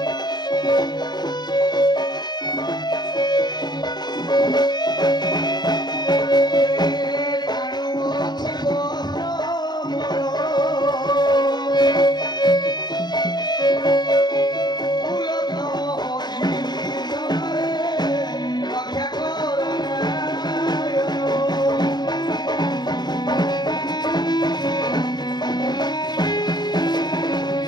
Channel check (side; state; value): right; late; 0.20 ms